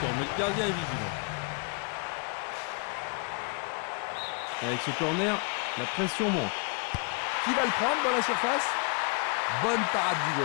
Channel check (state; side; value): quieter; right; 36.3 dB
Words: mais le gardien est vigilant. Et avec ce corner, la pression monte. Qui va le prendre dans la surface? Bonne parade du